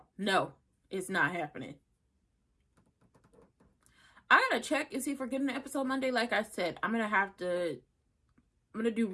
No, it's not happening. I gotta check and see if we're getting an episode Monday. Like I said, I'm gonna do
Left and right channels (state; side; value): identical; both; correlation 1.00